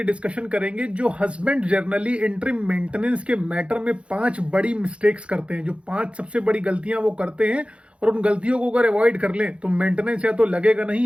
डिस्कशन करेंगे जो हस्बैंड जनरली इंटरिम मेंटेनेंस के मैटर में 5 बड़ी मिस्टेक्स करते हैं। जो 5 सबसे बड़ी गलतियां वो करते हैं और उन गलतियों को अगर अवॉइड कर लें तो मेंटेनेंस या तो लगेगा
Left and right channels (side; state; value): left; late; 0.060 ms